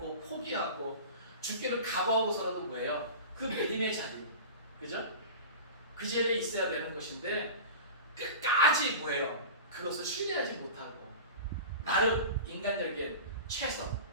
포기하고 죽기를 각오하고서라도 뭐예요? 그 믿음의 자리, 그죠? 그 자리에 있어야 되는 것인데 끝까지 뭐예요? 그것을 신뢰하지 못하고 나름 인간적인 최선,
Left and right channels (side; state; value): both; inverted; correlation -0.33